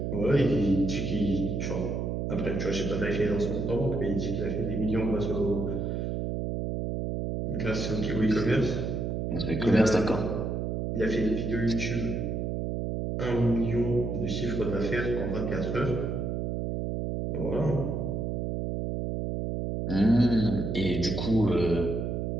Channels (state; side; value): noise; right; hum, 1 dB below the sound